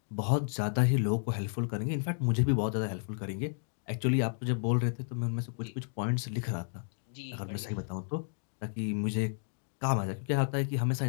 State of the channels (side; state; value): right; silent; digital silence